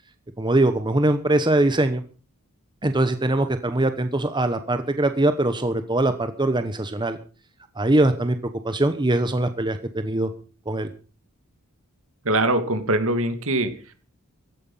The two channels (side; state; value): both; normal; correlation 0.63